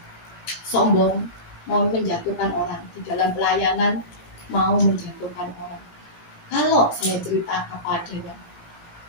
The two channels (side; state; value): right; late; 18 ms